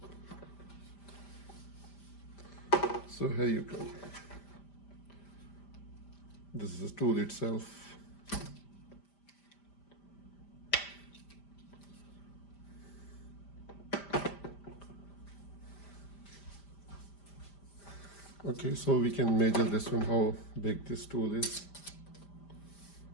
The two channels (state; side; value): late; right; 5.0 ms